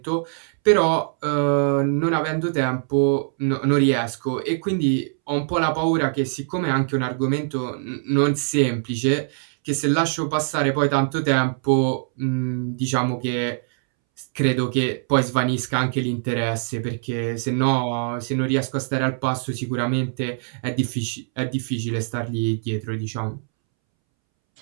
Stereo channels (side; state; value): left; silent; 63 dB below the other